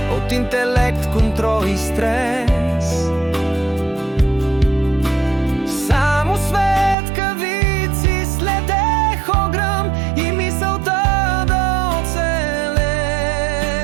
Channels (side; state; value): left; drops out; at 7.0 s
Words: от интелект, контрол и стрес. Само светкавици следех огръм и мисълта да оцелеш